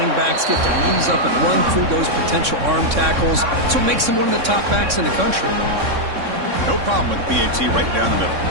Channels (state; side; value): late; left; 3.6 ms